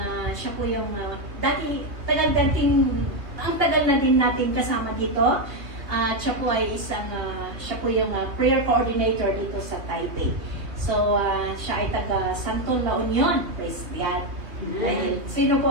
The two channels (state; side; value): late; left; 2.7 ms